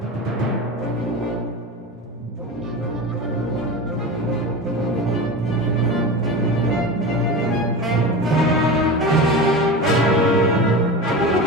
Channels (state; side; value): normal; both; correlation 0.27